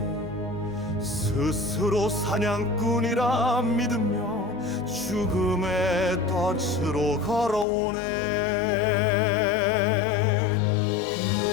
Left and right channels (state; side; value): drops out; right; at 7.7 s